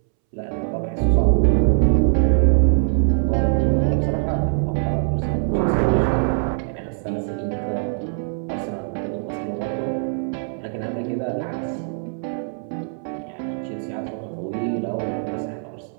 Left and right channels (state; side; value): silent; left; 64 dB below the other